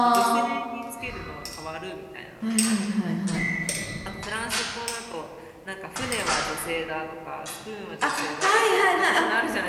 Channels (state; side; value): identical; both; correlation 1.00